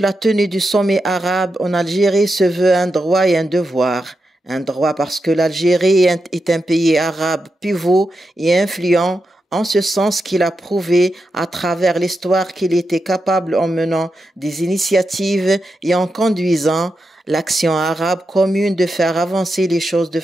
tenue du sommet arabe en Algérie se veut un droit et un devoir. Un droit parce que l'Algérie est un pays arabe pivot et influent, en ce sens qu'il a prouvé à travers l'histoire qu'il était capable en menant des initiatives et en conduisant l'action arabe commune de faire avancer les choses de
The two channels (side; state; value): both; normal; correlation 0.87